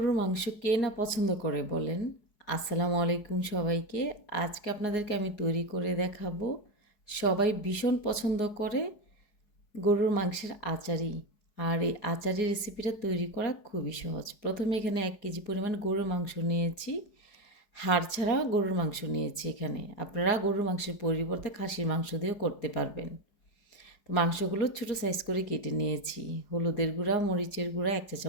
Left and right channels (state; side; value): late; right; 4.7 ms